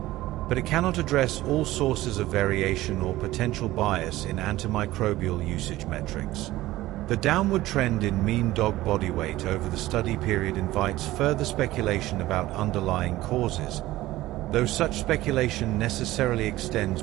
but it cannot address all sources of variation or potential bias in antimicrobial usage metrics. The downward trend in mean dog body weight over the study period invites further speculation about underlying causes, though such speculation necessarily extends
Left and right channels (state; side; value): quieter; left; 16.7 dB